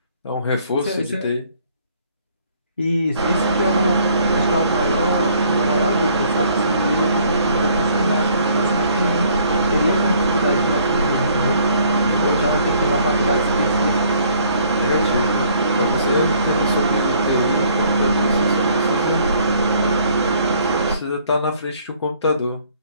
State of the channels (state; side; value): inverted; both; correlation -0.60